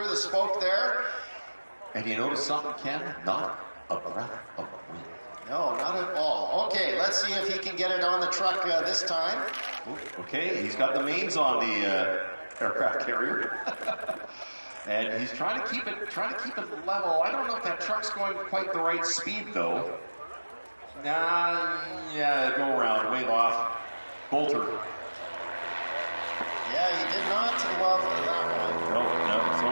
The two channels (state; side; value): inverted; both; correlation -1.00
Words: the spoke there. And you notice something, Ken? Not a breath of wind. No, not at all. Okay, let's see if he can get it on the truck this time. Okay, he's got the mains on the aircraft carrier. And he's trying to keep it level. I don't know if that truck's going quite the right speed though. Yeah, go around, wave off. Bolter. Yeah, he did not love that one. No. So